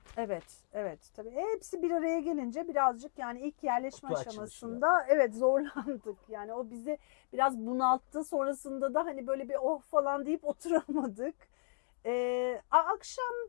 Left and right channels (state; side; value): silent; right; digital silence